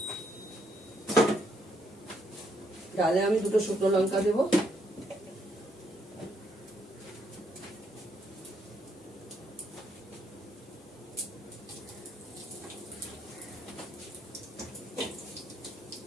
ডালে আমি 2টো শুকনো লঙ্কা দেবো।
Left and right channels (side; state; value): both; normal; correlation 0.73